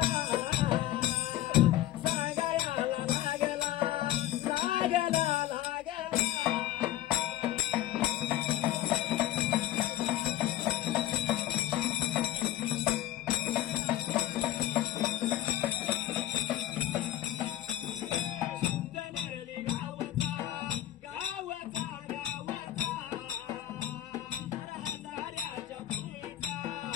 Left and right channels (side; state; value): right; quieter; 13.8 dB